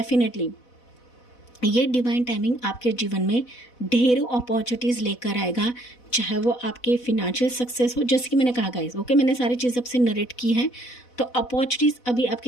ये डिवाइन टाइमिंग आपके जीवन में ढेरों अपॉर्चुनिटीज़ लेकर आएगा, चाहे वो आपके फिनेंशियल सक्सेस हो, जैसे कि मैंने कहा गाइस, ओके, मैंने सारी चीज़ आपसे नरेट की है। तो अपॉर्चुनिटीज़ अभी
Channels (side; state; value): right; late; 4.0 ms